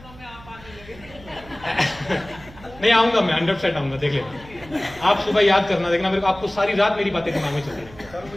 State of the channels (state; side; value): noise; right; hum, 21 dB below the sound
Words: में आप आने लगे। नहीं आऊंगा मैं, 100% आऊंगा, देख लेना। आप सुबह याद करना, देखना मेरे को, आपको सारी रात मेरी बातें दिमाग में चलती रहेंगी। सर